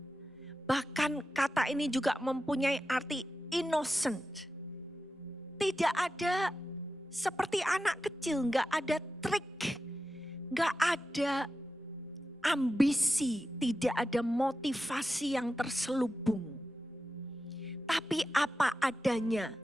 Bahkan kata ini juga mempunyai arti innocent. Tidak ada seperti anak kecil, nggak ada trik, nggak ada ambisi, tidak ada motivasi yang terselubung. Tapi apa adanya,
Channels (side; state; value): both; normal; correlation 0.91